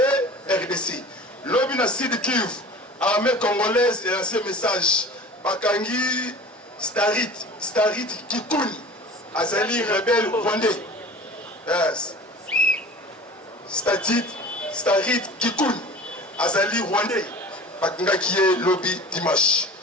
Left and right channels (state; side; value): normal; both; correlation 0.40